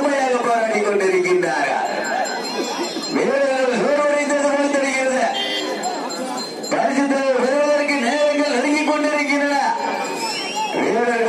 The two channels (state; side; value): identical; both; correlation 1.00